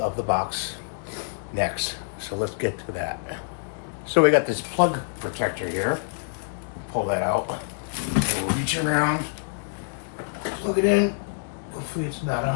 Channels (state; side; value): silent; right; digital silence